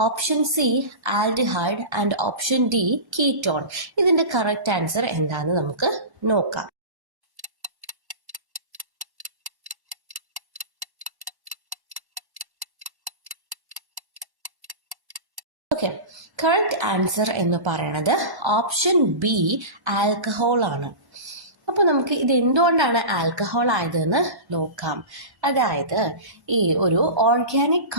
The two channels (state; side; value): late; left; 1.1 ms